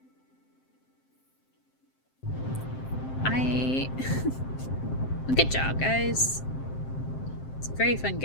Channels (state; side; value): late; right; 7.6 ms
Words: Good job, guys. It's a very fun